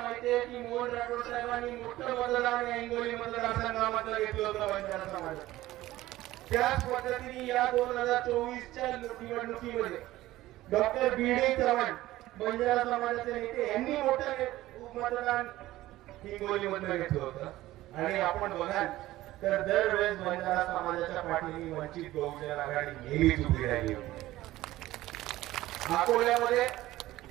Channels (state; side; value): quieter; left; 16.2 dB